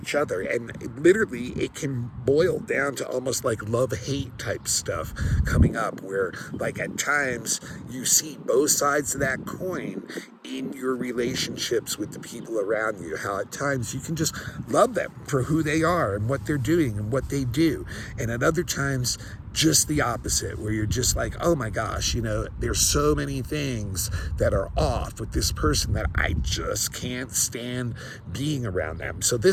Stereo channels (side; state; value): both; identical; correlation 1.00